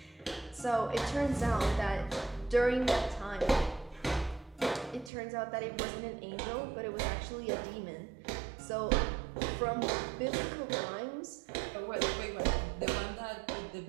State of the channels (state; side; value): drops out; left; at 5.1 s